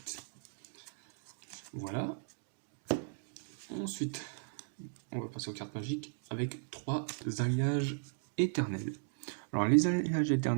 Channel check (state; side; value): silent; left; digital silence